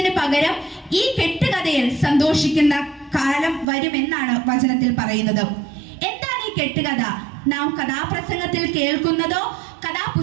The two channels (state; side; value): drops out; left; at 3.7 s